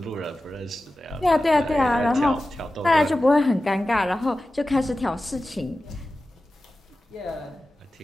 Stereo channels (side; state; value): both; normal; correlation 0.94